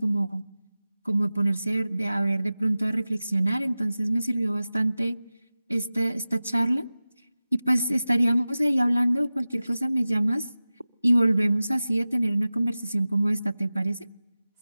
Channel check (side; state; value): both; inverted; correlation -0.96